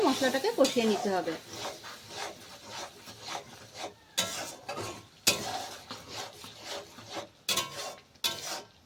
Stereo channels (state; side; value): identical; both; correlation 1.00